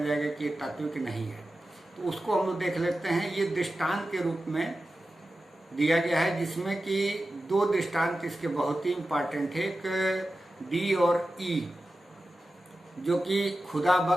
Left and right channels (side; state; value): both; normal; correlation 0.93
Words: जाएगा कि ये तात्विक नहीं है। तो उसको हम लोग देख लेते हैं। ये दृष्टांत के रूप में दिया गया है, जिसमें कि 2 दृष्टांत इसके बहुत ही इम्पॉर्टेंट है। एक डी और ई, जो कि खुदा